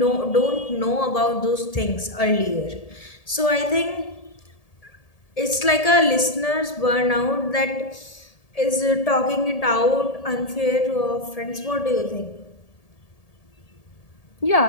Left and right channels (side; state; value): right; late; 1.7 ms